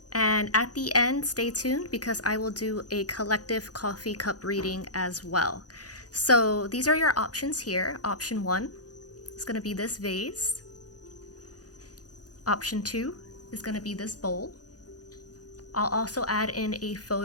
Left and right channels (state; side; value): late; right; 0.68 ms